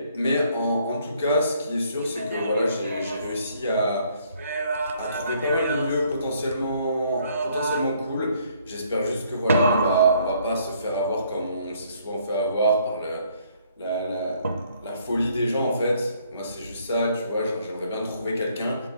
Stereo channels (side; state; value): both; inverted; correlation -0.66